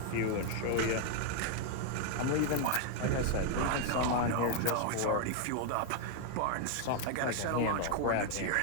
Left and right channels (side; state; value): both; different; correlation 0.00